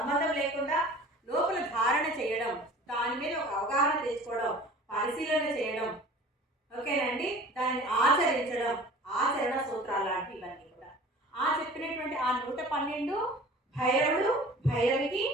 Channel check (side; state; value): both; normal; correlation 0.44